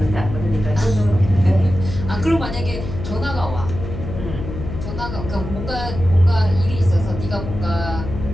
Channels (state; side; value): noise; left; hum, 7 dB below the sound